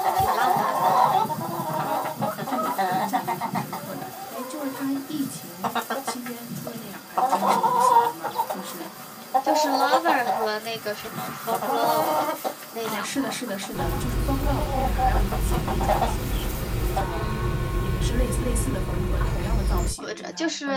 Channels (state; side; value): identical; both; correlation 1.00